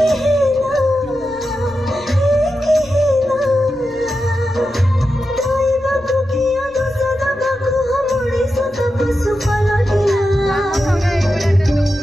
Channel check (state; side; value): noise; left; rumble, 25 dB below the sound